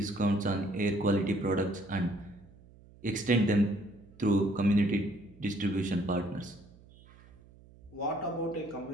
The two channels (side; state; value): right; noise; hum, 24 dB below the sound